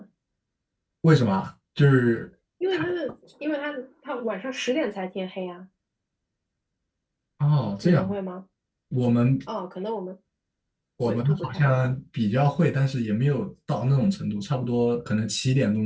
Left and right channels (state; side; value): identical; both; correlation 1.00